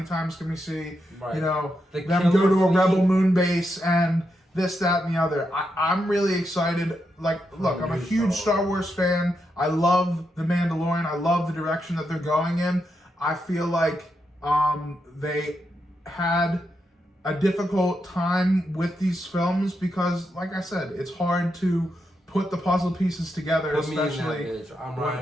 times can we see them go to a rebel moon base and this, that, and the other? I'm really excited. Like, look, I'm a huge Star Wars fan. I love The Mandalorian. I love the direction that they're going in. I feel like they had a difficult time with these films because, like I said, it's hard to put the puzzle pieces together, especially. I'm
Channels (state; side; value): normal; both; correlation 0.84